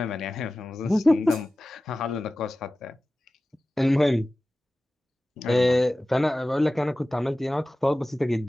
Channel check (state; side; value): normal; both; correlation 0.96